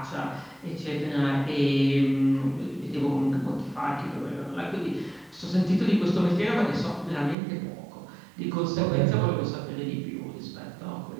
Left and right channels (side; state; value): left; drops out; at 7.4 s